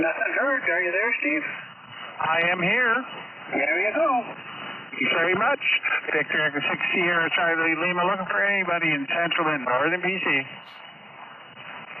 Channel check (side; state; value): both; normal; correlation 0.93